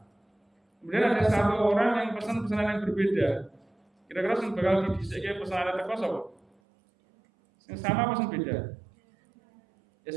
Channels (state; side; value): drops out; left; at 6.5 s